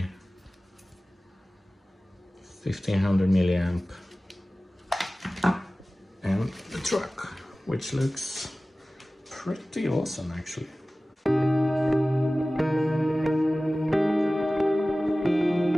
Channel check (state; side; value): normal; both; correlation 0.97